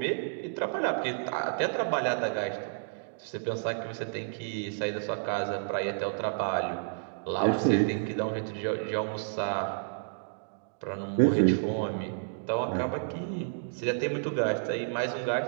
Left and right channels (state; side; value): silent; left; digital silence